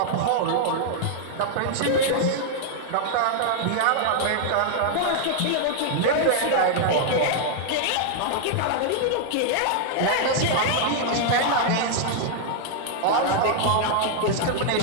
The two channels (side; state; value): both; different; correlation 0.00